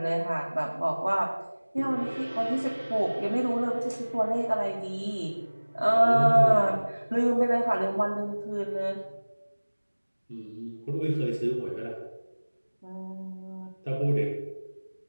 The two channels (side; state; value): both; inverted; correlation -1.00